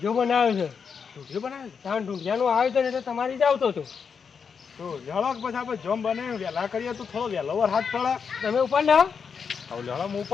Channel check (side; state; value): right; quieter; 6.2 dB